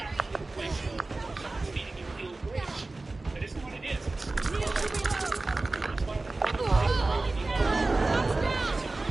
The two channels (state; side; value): quieter; left; 3.2 dB